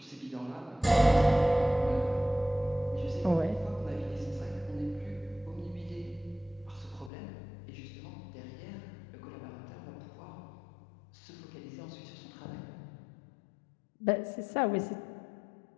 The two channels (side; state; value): right; drops out; at 7.1 s